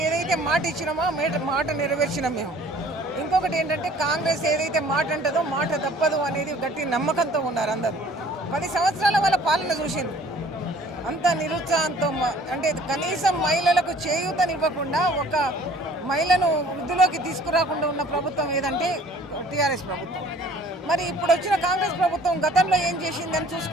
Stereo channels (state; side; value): normal; both; correlation 0.53